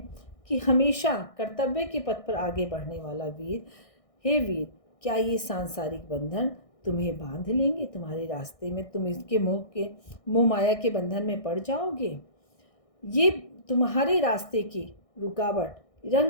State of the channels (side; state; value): right; late; 1.6 ms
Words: कि हमेशा कर्तव्य के पथ पर आगे बढ़ने वाला वीर, हे वीर, क्या ये सांसारिक बंधन तुम्हें बांध लेंगे तुम्हारे रास्ते में? तुम इसके मोह माया के बंधन में पड़ जाओगे। ये तुम्हारे रास्ते की रुकावट